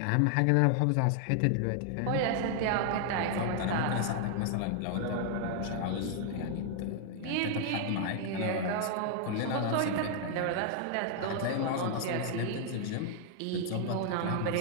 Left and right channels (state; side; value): different; both; correlation 0.00